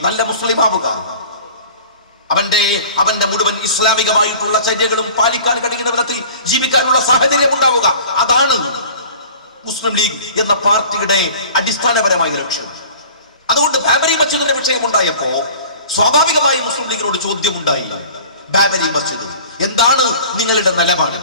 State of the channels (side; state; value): both; inverted; correlation -0.44